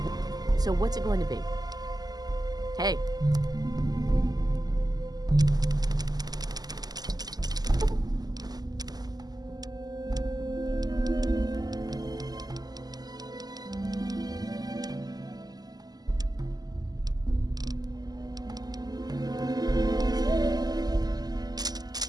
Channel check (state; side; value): late; left; 0.19 ms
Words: so what's it going to be? Hey.